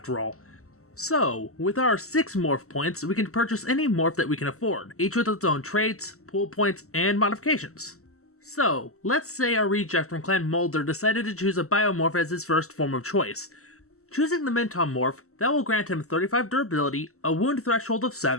all. So, with our 6 morph points, we can purchase any morph that we can afford, each with its own traits, pool points, and modifications. So, let's say our reject from Clan Mulder decided to choose a biomorph as his first form of choice. Choosing the Mintom morph, that will grant him 35 durability, a wound threshold of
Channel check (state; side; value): late; right; 0.63 ms